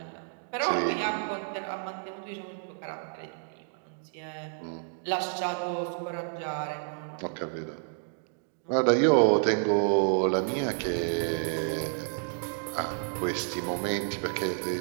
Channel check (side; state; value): left; silent; digital silence